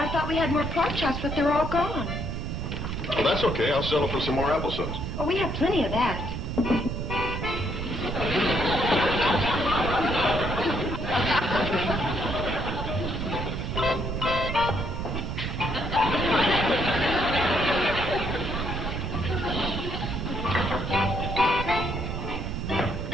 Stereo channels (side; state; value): right; noise; rumble, 3 dB below the sound